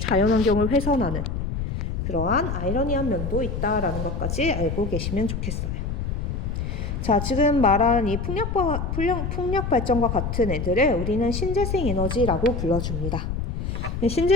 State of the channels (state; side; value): noise; left; rumble, 3 dB below the sound